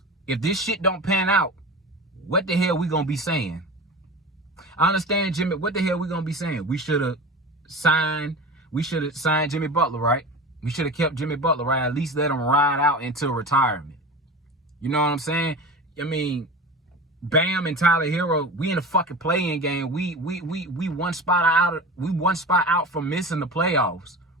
this shit don't pan out, what the hell we gonna be saying? I understand, Jimmy. What the hell we gonna be saying? We should have signed Jimmy Butler, right? We should have kept Jimmy Butler, right? At least let him ride out until retirement. You know what I'm saying? Bam and Tyler Hero, we in a fucking play-in game. We one spot out from missing the playoffs.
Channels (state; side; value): normal; both; correlation 0.31